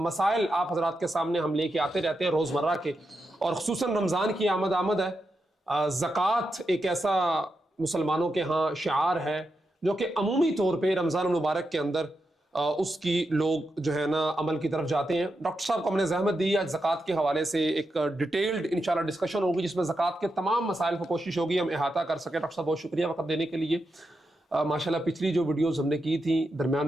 آپ حضرات کے سامنے ہم لے کے آتے رہتے ہیں روزمرہ کے، اور خصوصاً رمضان کی آمد ہے۔ زکوٰۃ ایک ایسا مسلمانوں کے ہاں شعار ہے جو کہ عمومی طور پہ رمضان المبارک کے اندر اس کی لوگ جو ہے نا عمل کی طرف جاتے ہیں۔ ڈاکٹر صاحب کو ہم نے زحمت دی، آج زکوٰۃ کے حوالے سے ایک ڈیٹیلڈ انشاءاللہ ڈسکشن ہوگی جس میں زکوٰۃ کے تمام مسائل کو کوشش ہوگی ہم احاطہ کر سکیں۔ ڈاکٹر صاحب بہت شکریہ وقت دینے کے لیے۔ ماشاءاللہ پچھلی جو ویڈیوز ہم نے کی تھیں درمیان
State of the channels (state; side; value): normal; both; correlation 0.86